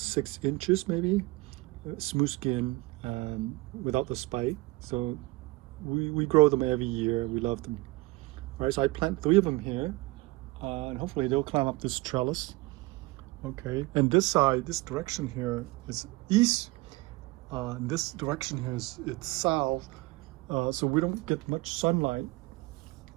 inches, maybe, smooth skin, without the spike. So we grow them every year. We love them. All right, so I plant 3 of them here, and hopefully they'll climb up this trellis. Okay, and this side, this direction here is east. And this direction here it's south, so we don't get much sunlight.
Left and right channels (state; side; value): quieter; left; 21.5 dB